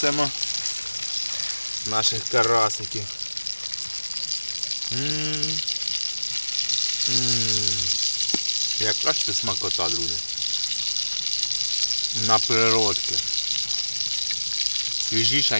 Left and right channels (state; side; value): inverted; both; correlation -1.00